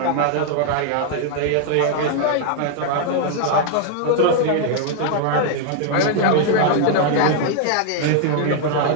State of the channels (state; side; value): different; both; correlation 0.00